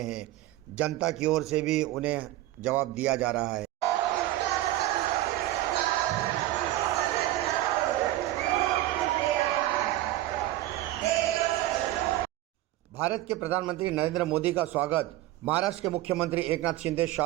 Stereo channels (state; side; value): quieter; left; 15.5 dB